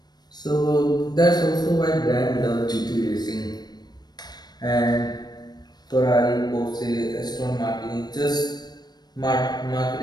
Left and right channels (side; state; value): right; late; 0.19 ms